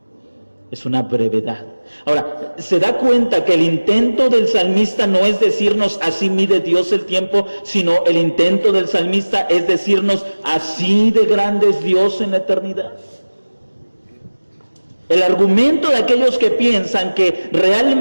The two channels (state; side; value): inverted; both; correlation -1.00